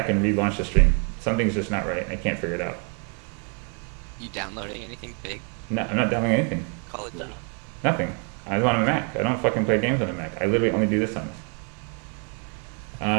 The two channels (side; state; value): left; quieter; 37.5 dB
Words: and relaunch the stream. Something's just not right and I can't figure it out. You downloading anything big? No, I'm not downloading anything. Call of Duty. Nothing. I was on a Mac. I don't fucking play games on a Mac. I literally only do this on this.